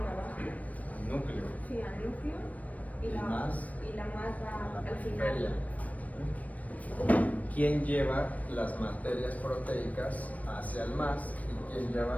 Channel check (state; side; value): late; right; 0.070 ms